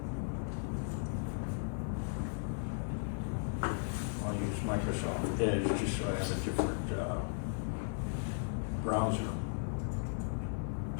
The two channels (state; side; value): silent; right; 54 dB below the other